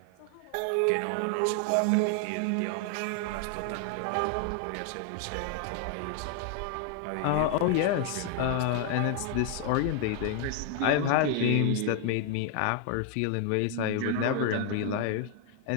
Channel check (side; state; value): both; different; correlation 0.00